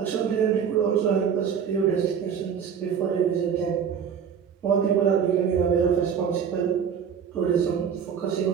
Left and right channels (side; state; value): left; quieter; 7.5 dB